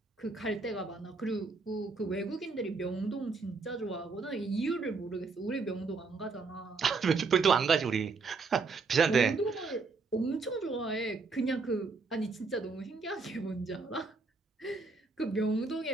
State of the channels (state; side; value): quieter; left; 4.2 dB